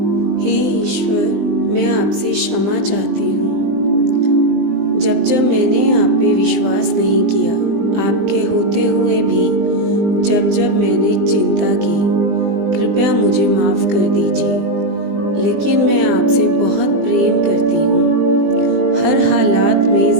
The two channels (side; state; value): left; late; 20 ms